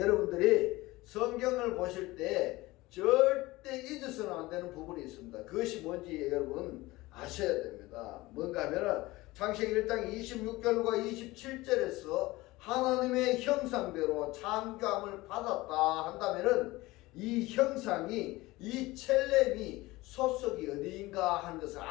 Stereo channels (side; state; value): right; quieter; 20.0 dB